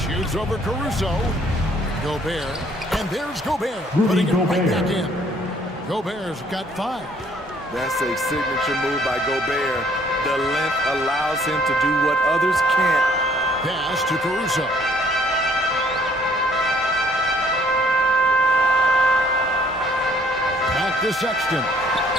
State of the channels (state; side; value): normal; both; correlation 0.61